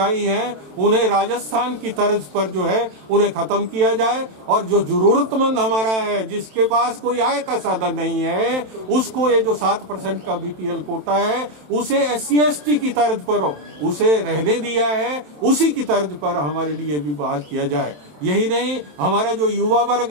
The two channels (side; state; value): left; late; 27 ms